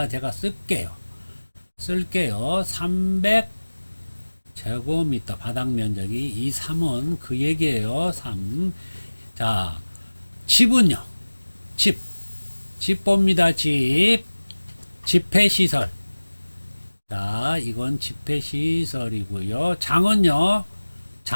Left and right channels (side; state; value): both; inverted; correlation -1.00